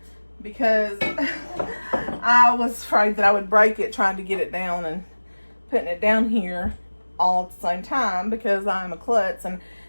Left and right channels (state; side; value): inverted; both; correlation -1.00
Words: because I was afraid that I would break it trying to get it down and putting it down here all at the same time, because I'm a klutz, and